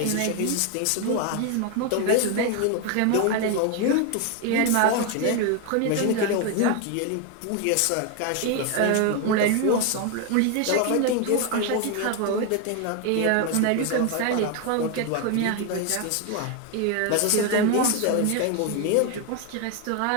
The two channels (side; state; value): both; different; correlation 0.01